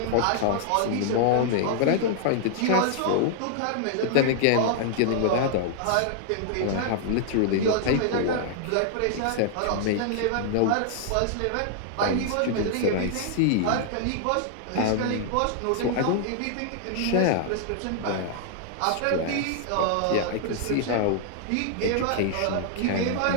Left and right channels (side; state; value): both; different; correlation -0.01